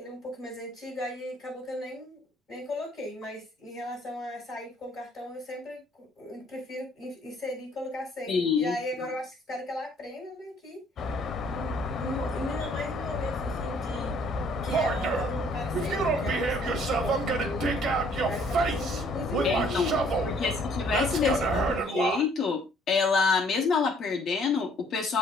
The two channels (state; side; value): normal; both; correlation 0.61